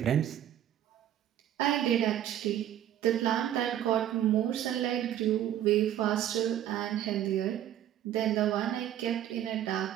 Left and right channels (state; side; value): quieter; left; 11.4 dB